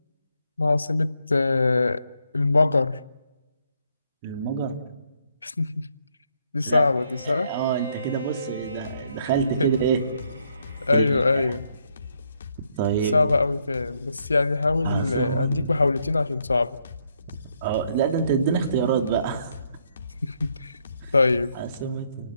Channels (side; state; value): both; inverted; correlation -0.74